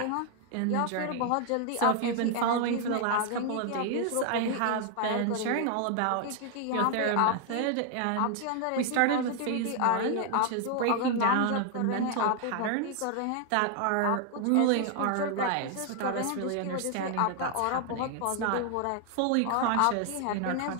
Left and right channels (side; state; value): both; different; correlation 0.00